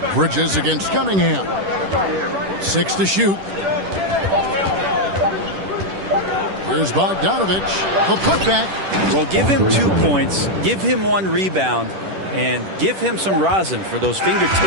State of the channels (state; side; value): late; left; 10 ms